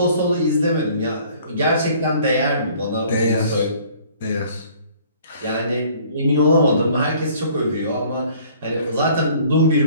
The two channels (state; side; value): inverted; both; correlation -0.55